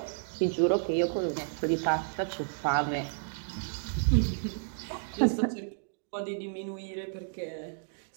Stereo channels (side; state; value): left; silent; digital silence